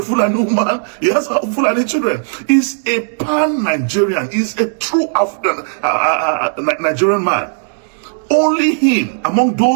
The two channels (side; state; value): left; silent; digital silence